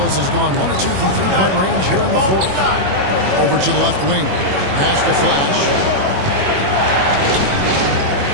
has gone 1 of 2 from three-point range here in the fourth. Over to the left wing. Pass to Flash.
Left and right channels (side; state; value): left; late; 21 ms